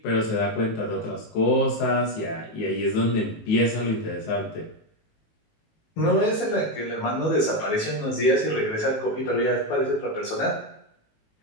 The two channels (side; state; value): right; late; 19 ms